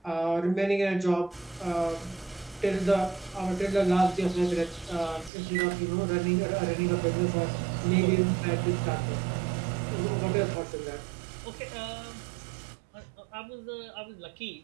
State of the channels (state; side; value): drops out; left; at 5.3 s